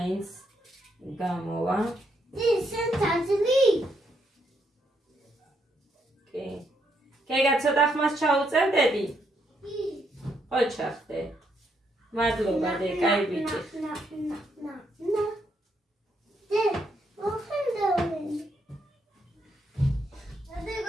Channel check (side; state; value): both; normal; correlation 0.76